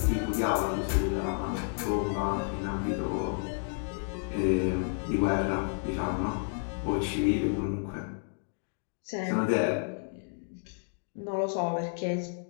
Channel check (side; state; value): right; silent; 57 dB below the other